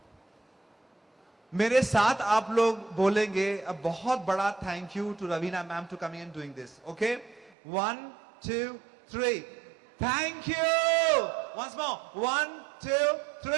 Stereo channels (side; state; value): left; drops out; at 7.5 s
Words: मेरे साथ आप लोग बोलेंगे a बहुत बड़ा thank you to Raveena ma'am to coming and doing this okay 1 2 3 thank you once more 1 2